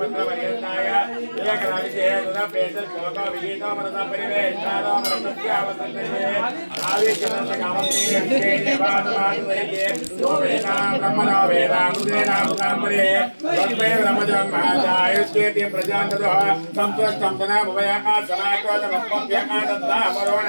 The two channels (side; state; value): both; inverted; correlation -1.00